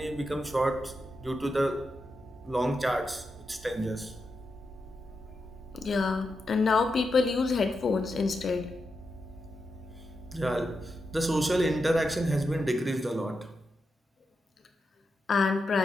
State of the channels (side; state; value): both; normal; correlation 0.87